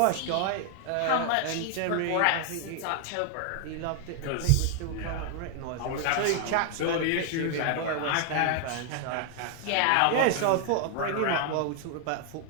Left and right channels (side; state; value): both; different; correlation 0.00